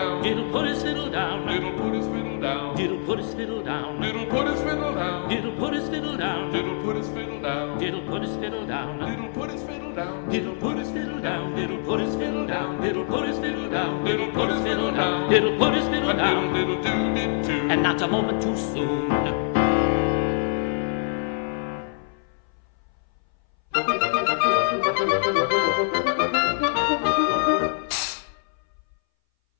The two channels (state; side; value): silent; right; 59 dB below the other